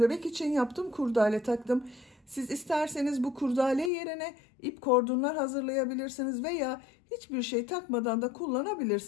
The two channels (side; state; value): right; drops out; at 3.9 s